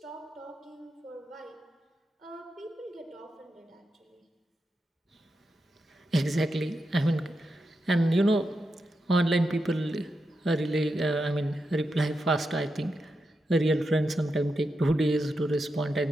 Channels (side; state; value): both; normal; correlation 0.87